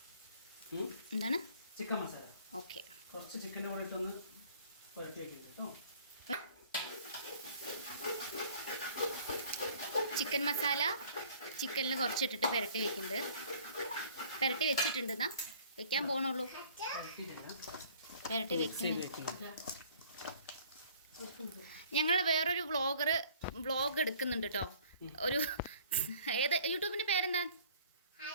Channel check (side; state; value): both; inverted; correlation -0.54